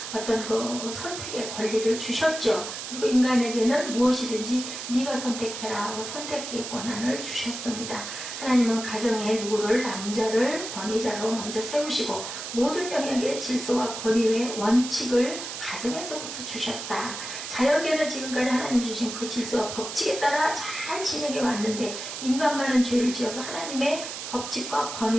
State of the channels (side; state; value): right; noise; hiss, 7 dB below the sound